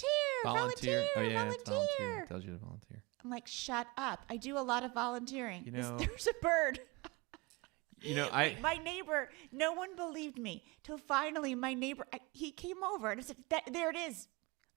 Oh yeah, Volunteer. it's volunteer. It tells you to volunteer. I'm like, shut up. I do a lot of volunteering. You know- There's a bird. You know, My neighbor, no one believed me till finally my neighbor, he came over and I said, there it is.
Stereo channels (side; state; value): left; quieter; 25.6 dB